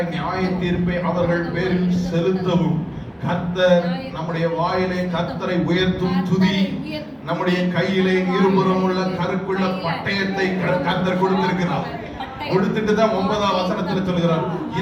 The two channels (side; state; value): both; identical; correlation 1.00